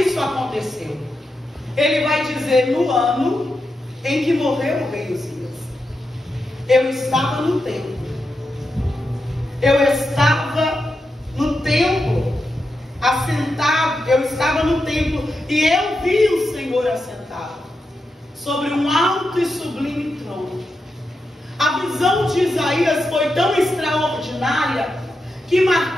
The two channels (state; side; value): normal; both; correlation 0.87